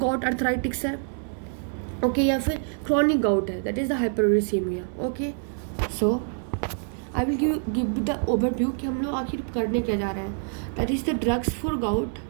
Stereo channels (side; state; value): left; silent; 61 dB below the other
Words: अर्थराइटिक्स है, ओके, या फिर क्रॉनिक गाउट है, that is the hyperuricaemia. Okay, so I will give the overview कि हम लोग आखिर करने क्या जा रहे हैं. That is the drugs for gout.